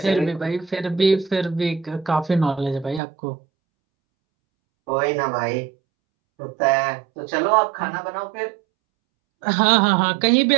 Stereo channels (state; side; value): drops out; left; at 3.0 s